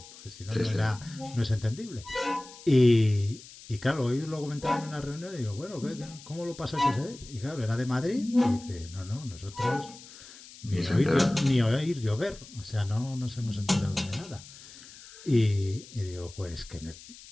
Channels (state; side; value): noise; left; hiss, 18 dB below the sound